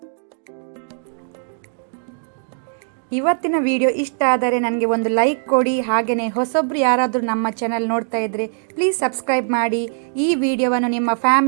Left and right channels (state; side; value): silent; left; digital silence